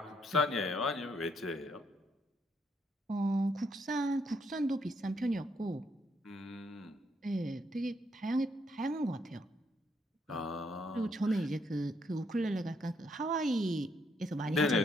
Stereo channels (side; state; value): both; normal; correlation 0.73